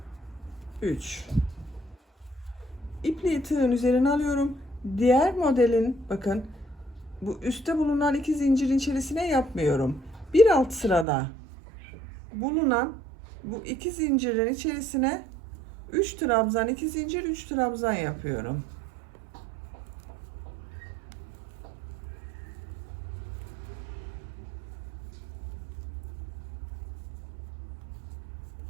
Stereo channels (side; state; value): left; drops out; at 11.1 s